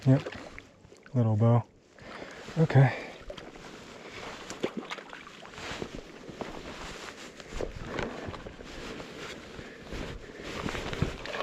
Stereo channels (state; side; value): identical; both; correlation 1.00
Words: Yep. Little bow. Okay.